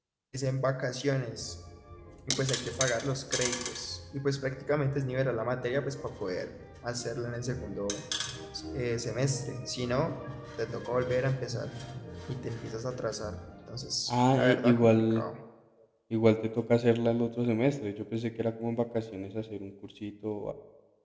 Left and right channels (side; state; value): both; identical; correlation 1.00